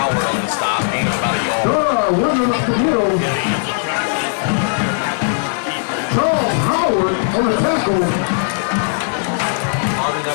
on the stop. Gain of about a yard. Running up the middle. Charles Howard on the tackle. Marvin's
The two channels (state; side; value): silent; right; digital silence